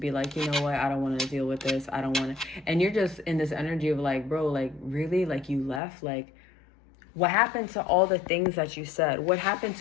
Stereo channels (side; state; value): right; drops out; at 5.8 s